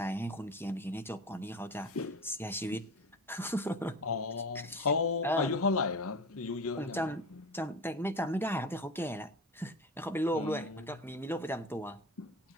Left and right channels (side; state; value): both; normal; correlation 0.31